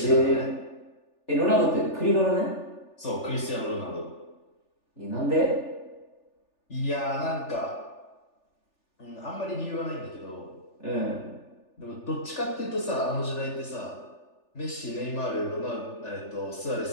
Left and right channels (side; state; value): right; late; 3.4 ms